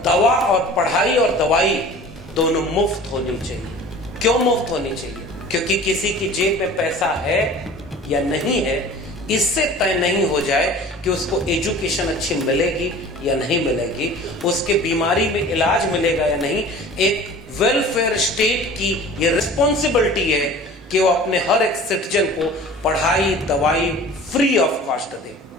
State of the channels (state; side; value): normal; both; correlation 0.43